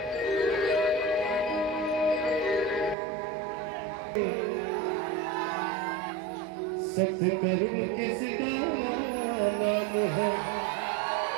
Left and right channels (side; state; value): left; drops out; at 3.0 s